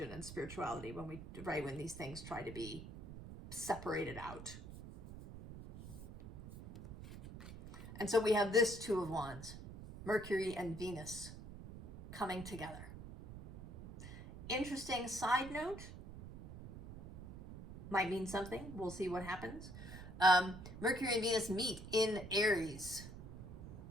and spirituality when these things try to be separated out. And so we have this Two of Wands, Mercury and Venus coming together. Interesting side note, might mean something. We'll see what happens. Mercury and Venus meet in Aries.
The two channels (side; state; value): right; noise; rumble, 12 dB below the sound